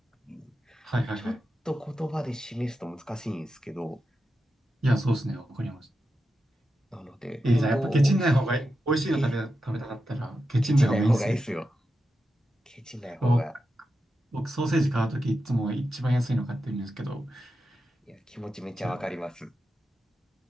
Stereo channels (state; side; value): normal; both; correlation 0.89